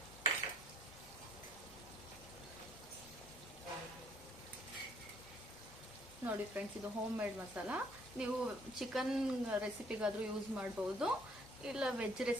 ನೋಡಿ ಫ್ರೆಂಡ್ಸ್, ಇದು ಹೋಮ್ ಮೇಡ್ ಮಸಾಲ. ನೀವು ಚಿಕನ್ ರೆಸಿಪಿಗಾದ್ರೂ ಯೂಸ್ ಮಾಡ್ಬೋದು, ಇಲ್ಲ ವೆಜ್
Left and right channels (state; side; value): normal; both; correlation 0.62